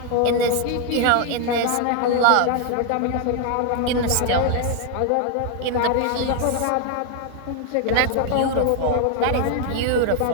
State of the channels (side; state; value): both; different; correlation 0.00